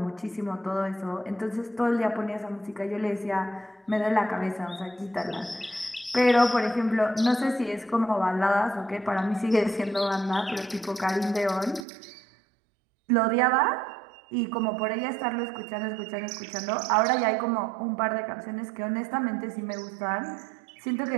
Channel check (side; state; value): left; drops out; at 11.9 s